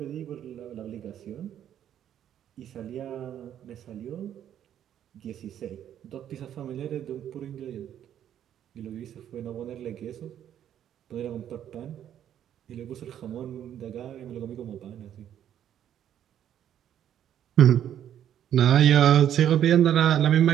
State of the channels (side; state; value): left; quieter; 10.3 dB